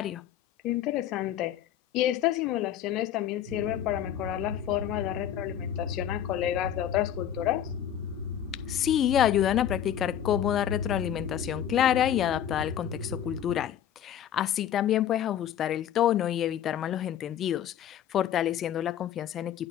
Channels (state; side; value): quieter; right; 10.2 dB